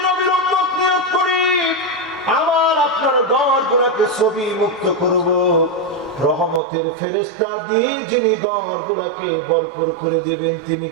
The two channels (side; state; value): left; drops out; at 6.6 s